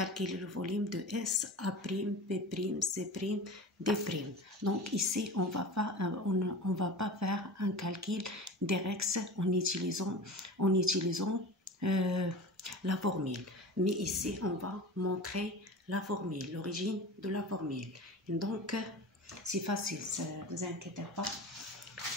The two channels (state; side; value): normal; both; correlation 0.34